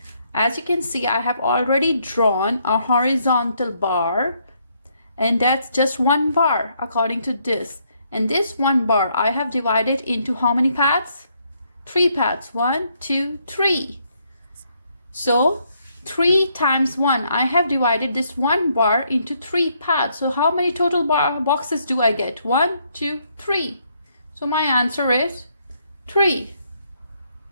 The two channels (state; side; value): inverted; both; correlation -0.73